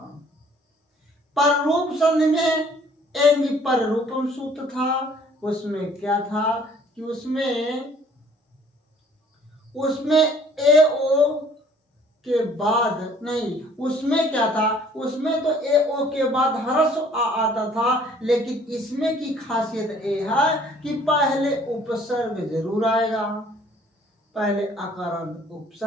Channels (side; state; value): both; normal; correlation 0.57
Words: पर रूप संधि में एंग पर रूपम सूत्र था। उसमें क्या था कि उसमें ए ओ के बाद नहीं, उसमें क्या था, उसमें तो ए ओ के बाद ह्रस्व आ आता था, लेकिन इसमें की खासियत ये है कि पहले उपसर्ग जरूर आएगा। पहले अकारांत